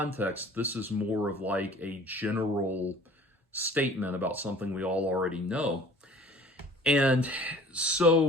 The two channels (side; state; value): both; normal; correlation 0.49